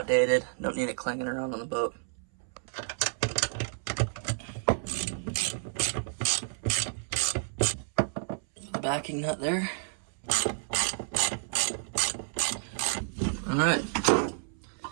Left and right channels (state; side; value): silent; left; 58 dB below the other